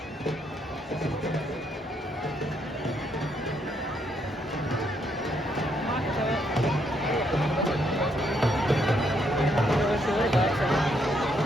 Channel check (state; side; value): normal; both; correlation 0.74